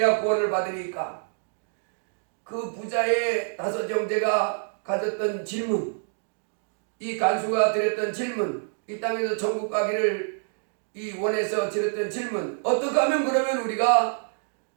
구원을 받으리까? 그 부자의 다섯 형제가 가졌던 질문, 이 간수가 드렸던 질문, 이 땅에서 천국 가기를 이 원에서 드렸던 질문, 어떻게 하면 그러면 우리가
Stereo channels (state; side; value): silent; left; digital silence